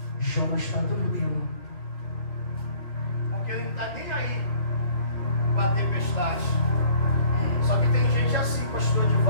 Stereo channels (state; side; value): late; right; 2.5 ms